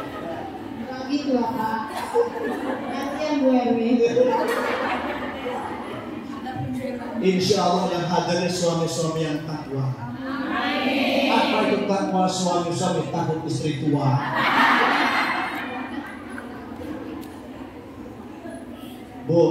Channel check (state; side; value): identical; both; correlation 1.00